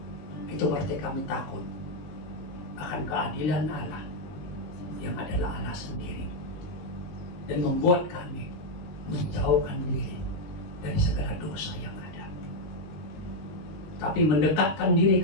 Itu berarti kami takut akan keadilan Allah yang adalah Allah sendiri. Dan membuat kami menjauhkan diri dari segala dosa yang ada. Tapi mendekatkan diri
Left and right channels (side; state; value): right; late; 19 ms